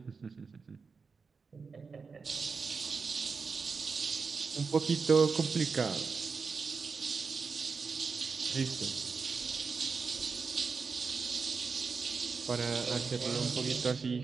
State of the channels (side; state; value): left; quieter; 5.0 dB